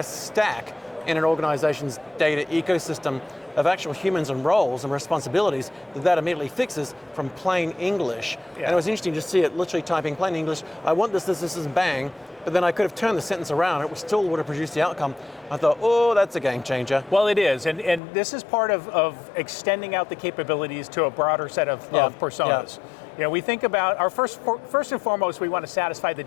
stack in an organization's data ecosystem of actual humans and roles and responsibilities that immediately fixes from plain English. And it was interesting to see it literally typing plain English, I want this, and bang, but then I could have turned the sentence around, it still would have produced the outcome. I thought, oh, that's a game changer. Well, it is, and this is part of extending out the capabilities to a broader set of personas. We think about our first and foremost, we want to satisfy the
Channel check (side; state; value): right; drops out; at 18.0 s